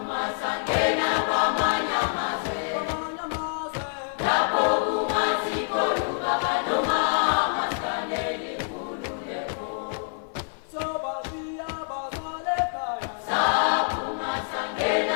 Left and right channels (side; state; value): right; silent; 61 dB below the other